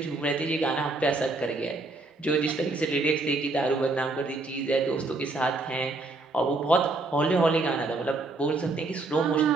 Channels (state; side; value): quieter; left; 3.3 dB